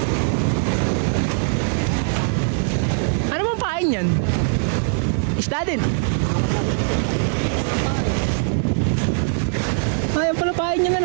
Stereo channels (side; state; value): left; silent; digital silence